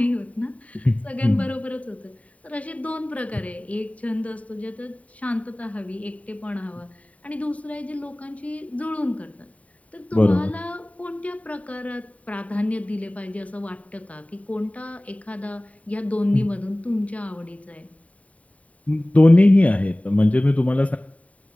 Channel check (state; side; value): late; right; 0.068 ms